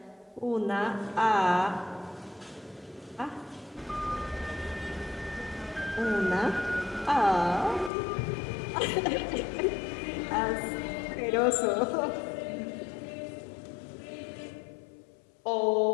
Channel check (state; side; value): drops out; right; at 7.9 s